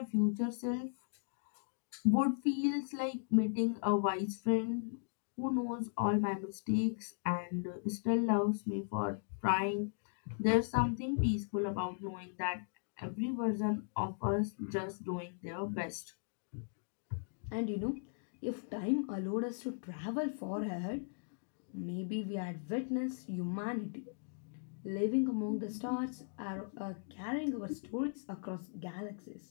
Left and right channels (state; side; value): silent; right; digital silence